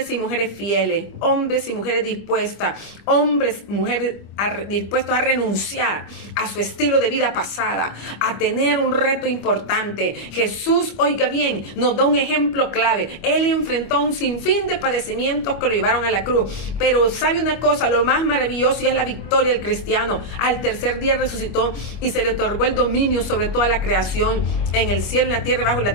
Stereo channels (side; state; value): right; late; 25 ms